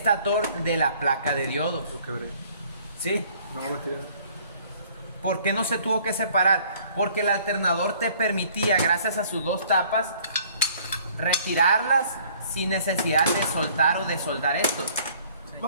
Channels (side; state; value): both; inverted; correlation -0.57